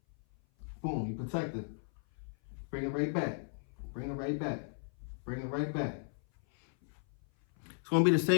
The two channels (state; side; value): silent; right; 54 dB below the other